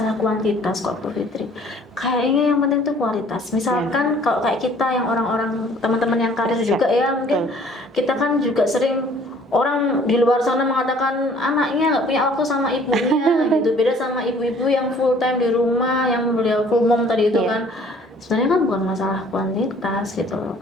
kuantitas kok Bu Fitri. Kayaknya yang penting itu kualitas. Misalkan kalau kayak kita yang orang-orang teman-teman yang karir juga ya, mungkin kita kan juga sering orang di luar sana mengatakan anaknya nggak punya waktu sama ibunya gitu. Beda sama ibu-ibu yang full time di rumah, yang beliau full mom tadi itu kan. Sebenarnya kan bukan masalah kuantitas gitu loh.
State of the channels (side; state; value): both; normal; correlation 0.55